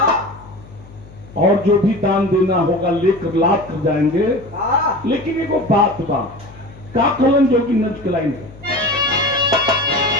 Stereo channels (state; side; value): noise; left; hum, 20 dB below the sound